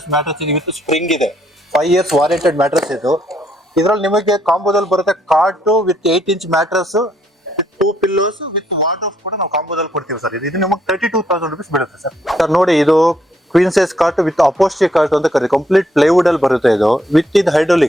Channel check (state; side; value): normal; both; correlation 0.71